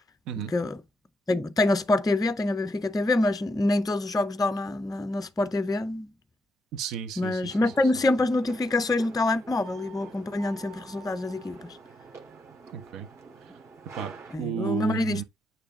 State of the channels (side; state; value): both; normal; correlation 0.81